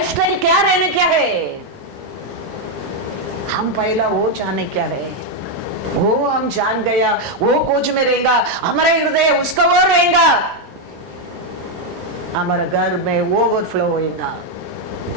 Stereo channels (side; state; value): both; normal; correlation 0.02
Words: क्या रहने क्या है, हम पहला वो जाने क्या है, वो हम जान गया, वो खोज में रहेगा, हमारा हृदय उसका वो रहेगा। हमारे घर में ओवरफ्लो होगा,